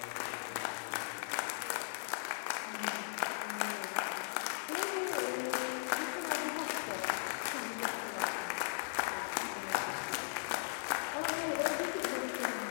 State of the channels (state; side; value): silent; right; digital silence